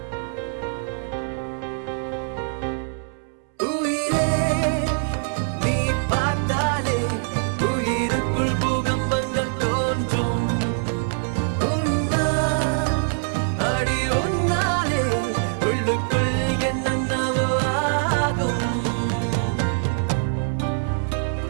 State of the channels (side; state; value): left; silent; 63 dB below the other